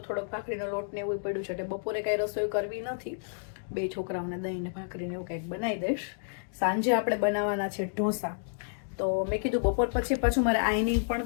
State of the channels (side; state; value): right; silent; digital silence